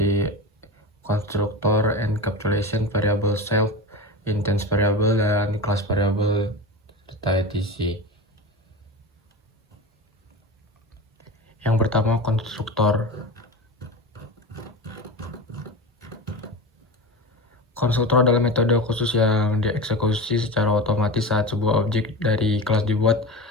constructor, encapsulation, variable self, instance variable, dan class variable, serta etc. Yang pertama, konstruktor. Konstruktor adalah metode khusus yang dieksekusi secara otomatis saat sebuah objek dari kelas dibuat.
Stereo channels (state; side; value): normal; both; correlation 0.27